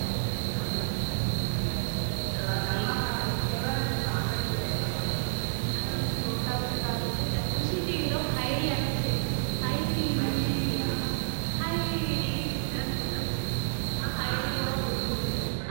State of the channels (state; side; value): silent; left; digital silence